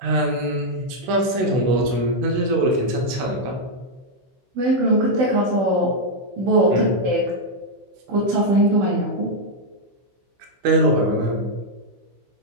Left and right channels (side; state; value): left; late; 16 ms